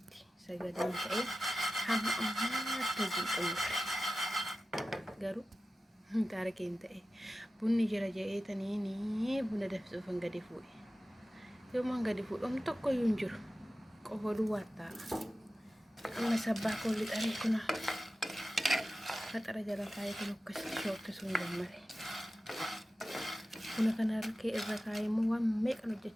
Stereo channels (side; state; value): both; normal; correlation 0.94